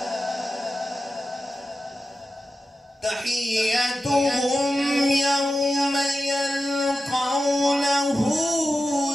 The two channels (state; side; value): normal; both; correlation 0.92